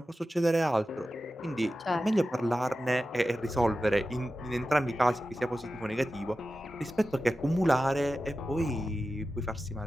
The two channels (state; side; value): normal; both; correlation 0.93